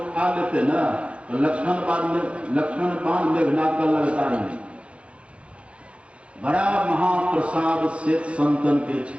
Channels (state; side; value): late; left; 0.061 ms